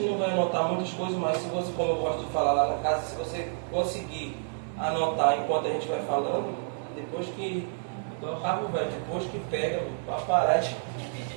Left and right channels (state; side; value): silent; left; 59 dB below the other